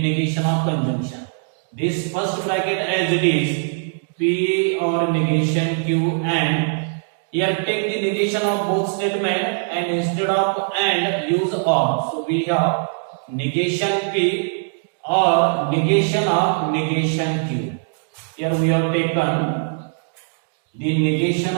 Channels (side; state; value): left; silent; digital silence